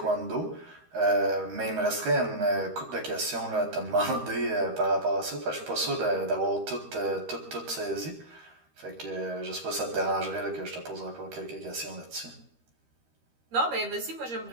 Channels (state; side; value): late; left; 13 ms